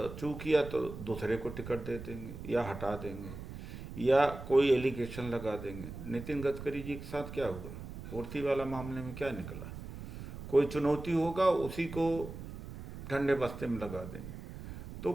किया तो दूसरे को टिकट दे देंगे या हटा देंगे या कोई एलिगेशन लगा देंगे। नितिन गडकरी जी के साथ क्या हुआ, पूर्ति वाला मामले में क्या निकला? कोई चुनौती होगा उसी को ठंडे बस्ते में लगा देंगे। तो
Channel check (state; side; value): noise; right; rumble, 11 dB below the sound